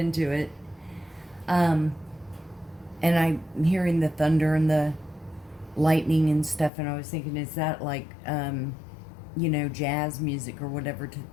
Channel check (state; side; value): drops out; right; at 6.7 s